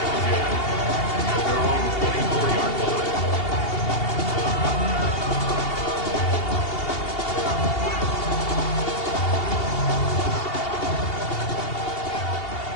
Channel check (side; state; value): right; late; 2.8 ms